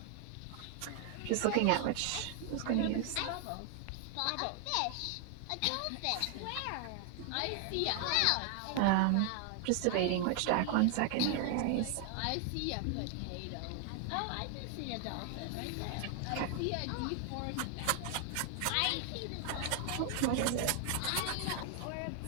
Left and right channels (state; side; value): different; both; correlation 0.00